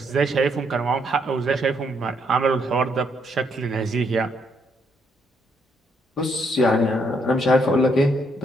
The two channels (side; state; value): both; normal; correlation 0.73